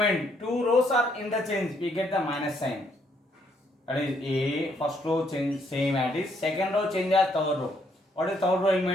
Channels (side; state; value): both; normal; correlation 0.71